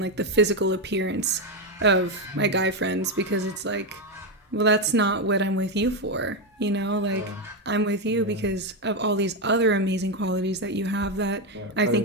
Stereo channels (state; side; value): normal; both; correlation 0.08